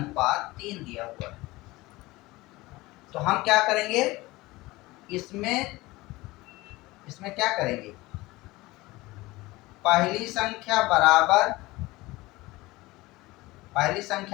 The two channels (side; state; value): right; quieter; 20.4 dB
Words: दिया हुआ है। तो हम क्या करेंगे? इसमें क्या करेंगे? पहली संख्या बराबर